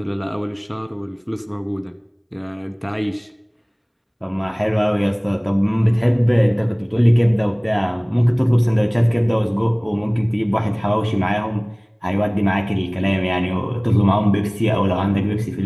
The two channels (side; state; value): both; identical; correlation 1.00